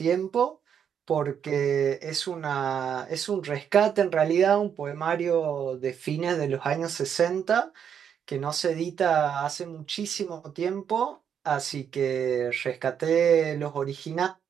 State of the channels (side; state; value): left; quieter; 8.1 dB